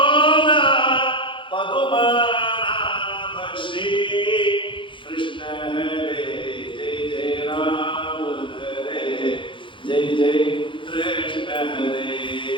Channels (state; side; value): late; right; 0.24 ms